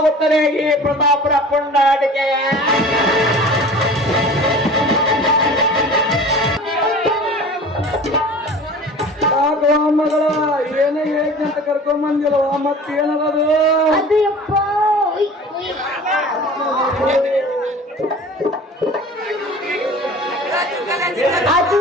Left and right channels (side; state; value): both; normal; correlation 0.41